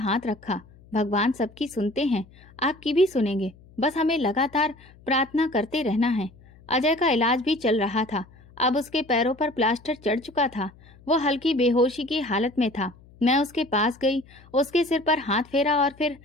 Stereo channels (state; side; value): noise; left; hum, 25 dB below the sound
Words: रखा। भगवान सबकी सुनते हैं, आपकी भी सुनेंगे, बस हमें लगातार प्रार्थना करते रहना है। अजय का इलाज भी चल रहा था। अब उसके पैरों पर प्लास्टर चढ़ चुका था। वो हल्की बेहोशी की हालत में था। मैं उसके पास गई, उसके सिर पर हाथ फेरा और फिर